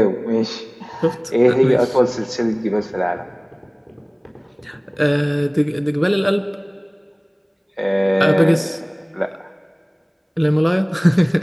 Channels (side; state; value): both; identical; correlation 1.00